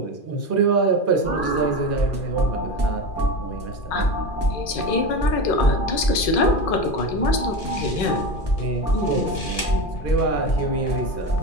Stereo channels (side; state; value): right; late; 2.4 ms